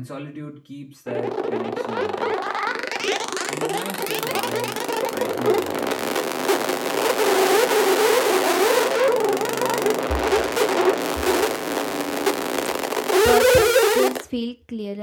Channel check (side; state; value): both; identical; correlation 1.00